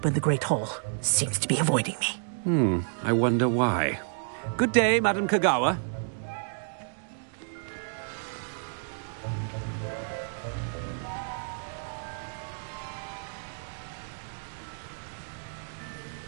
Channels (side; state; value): left; silent; digital silence